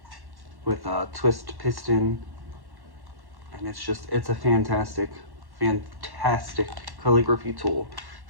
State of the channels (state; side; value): late; left; 1.1 ms